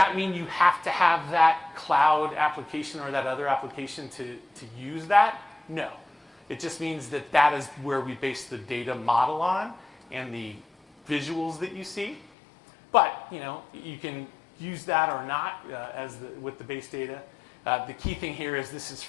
mean you have to have that cloud application or that other application to use that? No. It just means that that is where we base the data model on and the visuals that you see. But, you know, you can use that or not with the base data. The key thing here is this is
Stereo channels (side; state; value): right; drops out; at 12.3 s